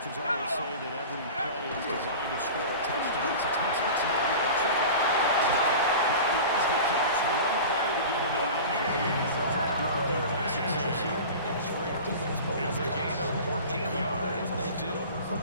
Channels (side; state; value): both; inverted; correlation -0.35